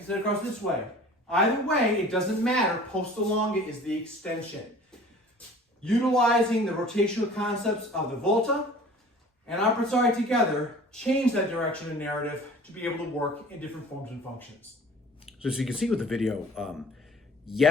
across this way. Either way, it doesn't matter. Posta Longa is the extension. Utilizing the rotational concepts of the volta and abrazare together change that direction and narrative to be able to work in different forms and functions. So as you can see with the video,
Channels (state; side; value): normal; both; correlation 0.46